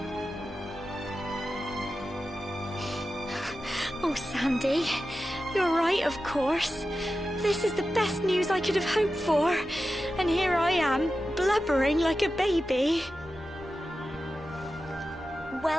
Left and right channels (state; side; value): normal; both; correlation 0.92